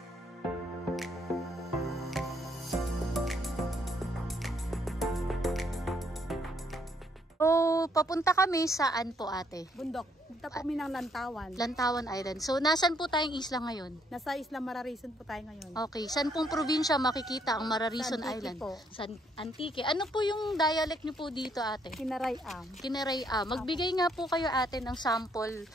So, papunta kami saan po ate? Bundok. Punta po kami ng Lantawan. Lantawan Island. So, nasan po tayong isla ngayon? Nasa Isla Mararison po tayo ngayon. Okay. Saan pong probinsya makikita ang Mararison Sa Antique Island? po. Sa Antique. Ano po yung dialect niyo po dito ate? Kinarayam. Kineray-am. Magbigay nga po kayo ate ng sample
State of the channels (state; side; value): normal; both; correlation 0.70